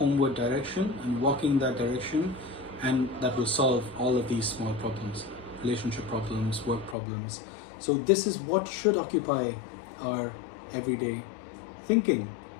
direction and walking that direction, and that will solve all of these small problems, relationship problems, work problems. So this is what should occupy our everyday thinking,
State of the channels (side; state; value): right; drops out; at 7.0 s